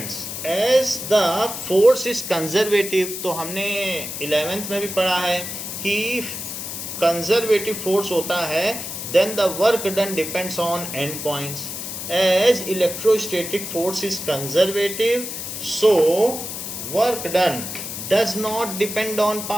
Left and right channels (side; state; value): left; noise; hiss, 7 dB below the sound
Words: as the force is conservative. तो हमने 11th में भी पढ़ा है कि कंजर्वेटिव फोर्स होता है, then the work done depends on end points. As electrostatic force is conservative, so work done does not depend on